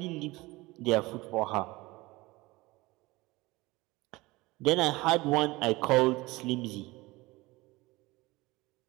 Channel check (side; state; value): left; quieter; 21.3 dB